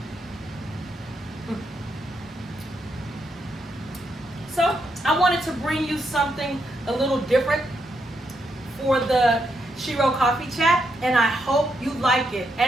So I wanted to bring you something a little different for the Shero Coffee Chat, and I hope you like it.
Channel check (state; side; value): normal; both; correlation 0.80